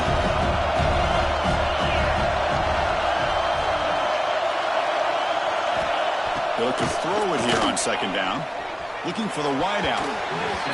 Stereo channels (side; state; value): both; identical; correlation 1.00